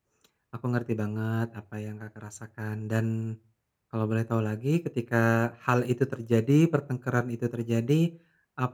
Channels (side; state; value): both; identical; correlation 1.00